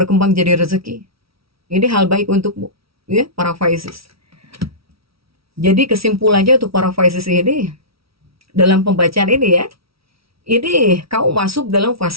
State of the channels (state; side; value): late; left; 0.75 ms